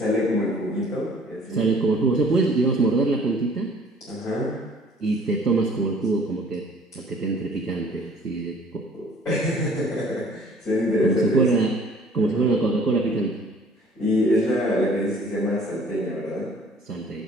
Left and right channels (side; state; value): both; normal; correlation 0.54